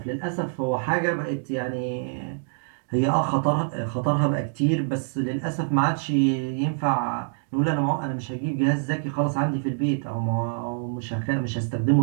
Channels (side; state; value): left; silent; digital silence